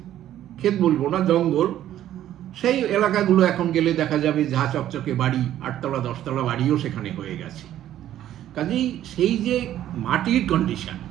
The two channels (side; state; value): left; quieter; 12.1 dB